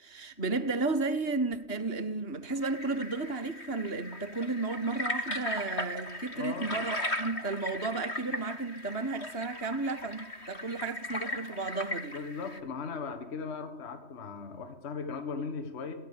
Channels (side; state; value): right; late; 3.1 ms